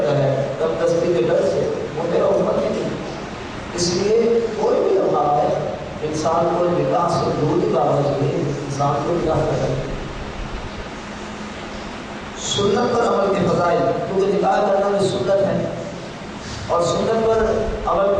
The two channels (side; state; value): both; identical; correlation 1.00